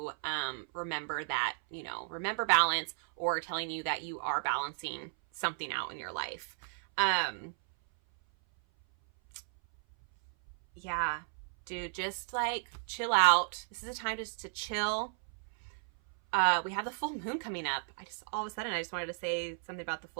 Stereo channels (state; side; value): silent; left; 55 dB below the other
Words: remember that, remember balance, or telling you that you are balancing something out in your life. Yeah, dude, just like chill out. This is a time just to chill. We have the full moon coming up. All of a sudden, I just wanted to say something about the